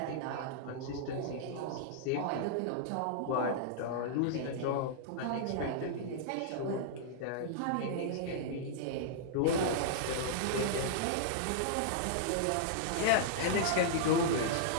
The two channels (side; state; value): both; different; correlation -0.01